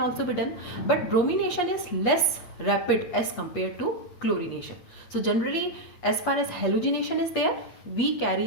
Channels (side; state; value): right; late; 8.4 ms